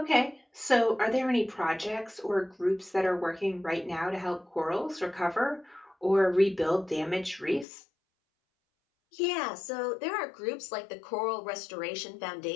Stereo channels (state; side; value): drops out; right; at 7.7 s